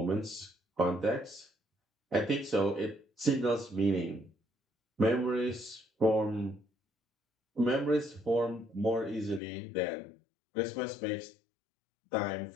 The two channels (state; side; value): drops out; right; at 9.4 s